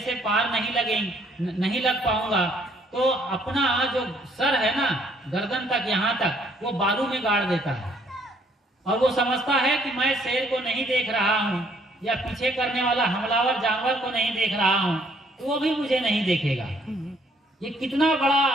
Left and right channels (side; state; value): both; normal; correlation 0.65